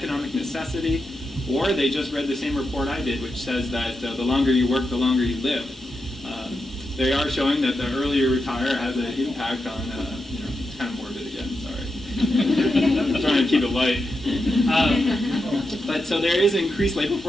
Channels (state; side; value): normal; both; correlation 0.87